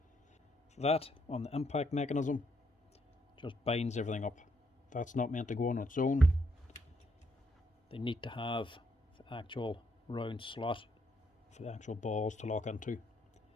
That on the impact mechanism just binds everything up. That's not meant to go on its own. They need to have the actual round slot for the actual balls to lock into. If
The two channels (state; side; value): normal; both; correlation 0.74